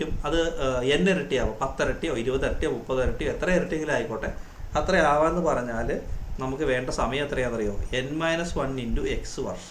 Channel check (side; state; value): both; identical; correlation 1.00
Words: അത് എൻ ഇരട്ടിയാവും, 10 ഇരട്ടിയോ 20 ഇരട്ടിയോ 30 ഇരട്ടിയോ എത്ര ഇരട്ടിയെങ്കിലും ആയിക്കോട്ടെ, അത്ര ആവാമെന്ന് പറഞ്ഞാൽ നമുക്ക് വേണ്ട സമയം എത്രയാണെന്നറിയോ? n-1 ഇൻറ്റു എക്സ്